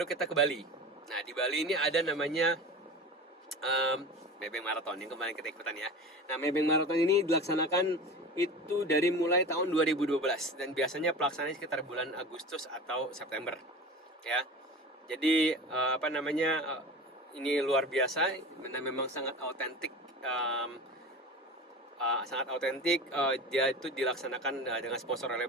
kita ke Bali. Nah, di Bali ini ada namanya Maybank Marathon yang kemarin kita ikutan, ya. Nah, Maybank Marathon ini dilaksanakan itu dari mulai tahun 2012 dan biasanya pelaksanaannya sekitar bulan Agustus atau September, ya. Jadi ini luar biasa, memang sangat autentik. Dia itu dilaksanakan dengan sponsor oleh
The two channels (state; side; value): normal; both; correlation 0.33